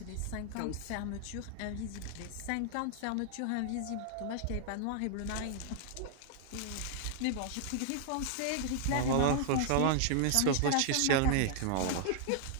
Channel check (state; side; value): different; both; correlation 0.00